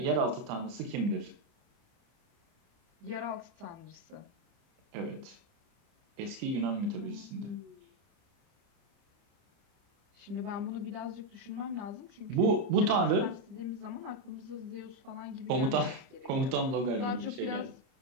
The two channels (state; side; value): late; left; 30 ms